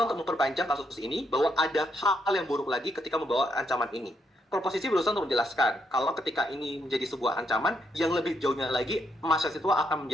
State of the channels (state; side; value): normal; both; correlation 0.76